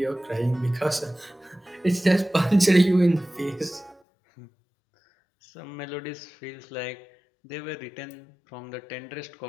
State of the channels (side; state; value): right; drops out; at 4.0 s